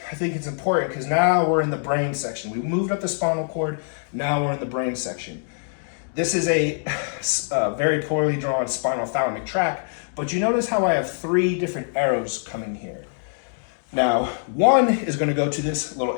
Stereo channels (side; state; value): right; silent; digital silence